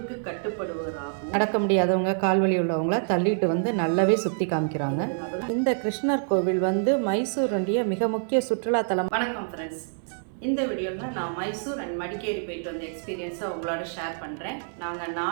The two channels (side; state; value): left; silent; 60 dB below the other